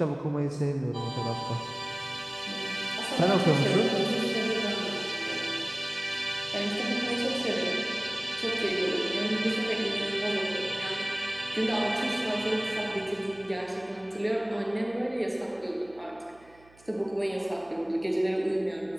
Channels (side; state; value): right; noise; hum, 27 dB below the sound